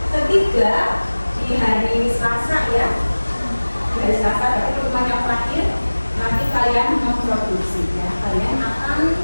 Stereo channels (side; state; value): both; inverted; correlation -1.00